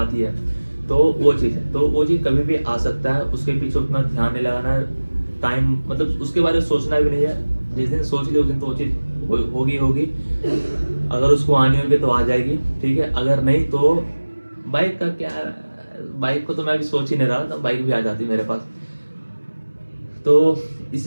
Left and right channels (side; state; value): both; inverted; correlation -1.00